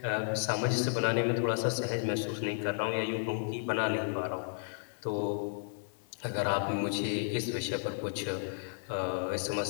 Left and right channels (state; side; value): silent; right; 56 dB below the other